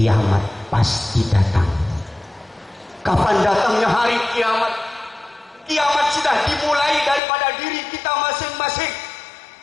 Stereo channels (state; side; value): drops out; right; at 7.2 s